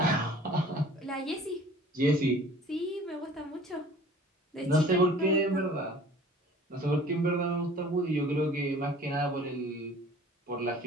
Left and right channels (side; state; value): both; normal; correlation 0.48